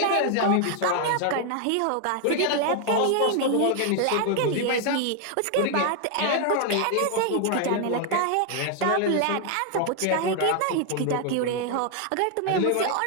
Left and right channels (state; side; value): different; both; correlation 0.00